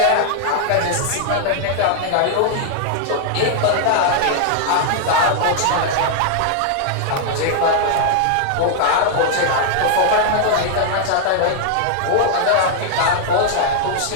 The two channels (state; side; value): different; both; correlation 0.00